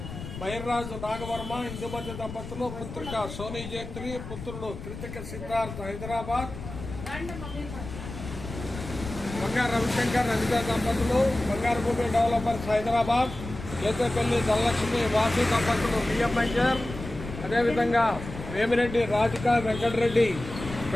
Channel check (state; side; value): noise; left; rumble, 10 dB below the sound